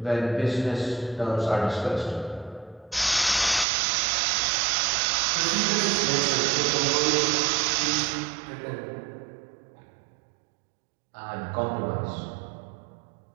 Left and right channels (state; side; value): drops out; left; at 3.7 s